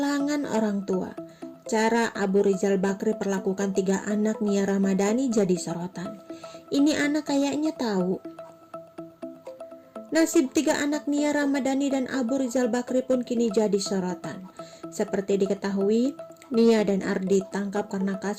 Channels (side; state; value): both; identical; correlation 1.00